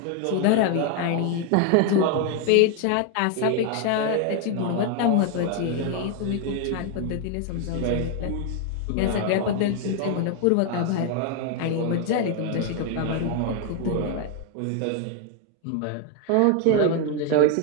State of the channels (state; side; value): different; both; correlation 0.01